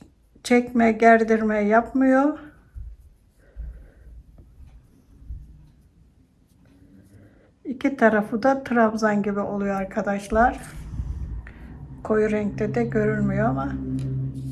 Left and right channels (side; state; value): both; identical; correlation 1.00